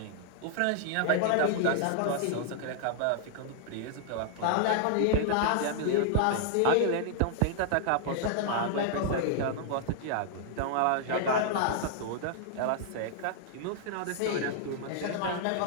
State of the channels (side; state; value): both; different; correlation -0.01